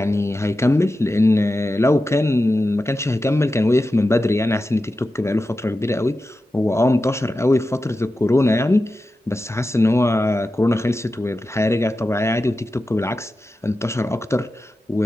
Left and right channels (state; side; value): normal; both; correlation 0.92